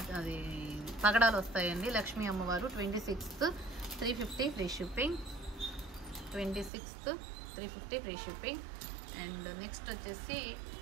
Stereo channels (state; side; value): drops out; left; at 6.7 s